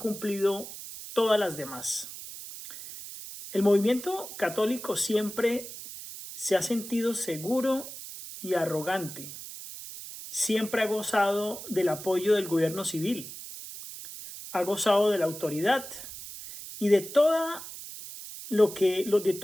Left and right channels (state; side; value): noise; right; hiss, 12 dB below the sound